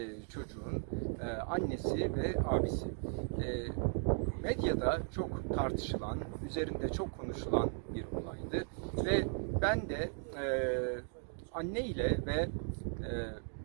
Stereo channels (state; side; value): silent; left; 53 dB below the other